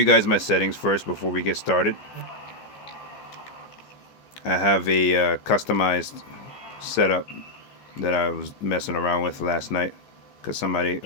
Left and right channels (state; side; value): late; right; 15 ms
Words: guys my settings first before we get started. I have a customized setup that I was messing around with last night because somebody